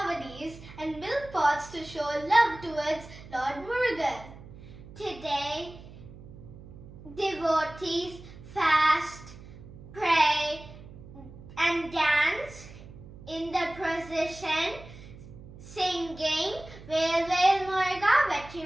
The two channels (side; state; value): right; noise; hum, 17 dB below the sound